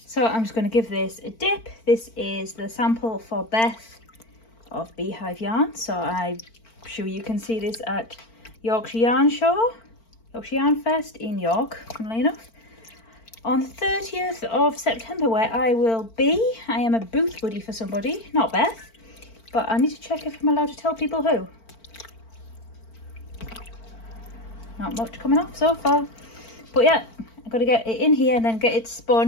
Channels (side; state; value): right; late; 4.4 ms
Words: So I'm just going to give this a dip. This is the sample for Beth of Beehive Yarn. So I'm sure you can see this at Yorkshire Yarn Fest in York, funnily enough, on the 30th of September, where I will be. I am a booth buddy for somebody, not Beth, but I need to check if I'm allowed to tell people who. Not much coming off so far, but yeah, I've got to get it in here and then get it